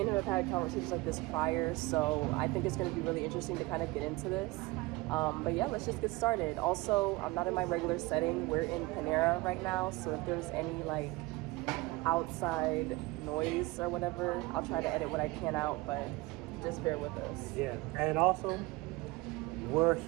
him have had conversations like this prior, so I think it's going to be really interesting to kind of get into this. But yeah, let's just get started. Also, I'm not in my regular setting. We're in Panera right now, so if there's any like outside noise or whatever, I'll try to edit what I can out, but just bear with us. Yeah, and also, we're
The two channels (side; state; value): left; quieter; 22.0 dB